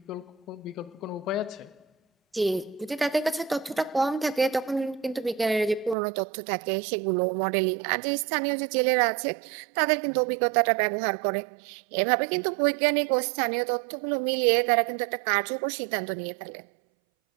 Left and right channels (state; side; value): drops out; left; at 6.0 s